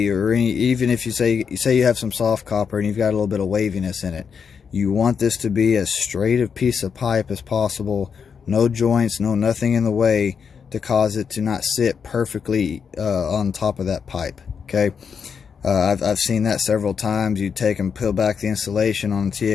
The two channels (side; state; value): right; quieter; 6.5 dB